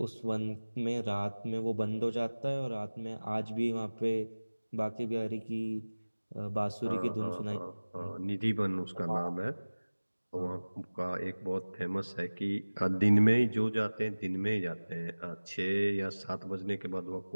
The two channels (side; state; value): both; inverted; correlation -1.00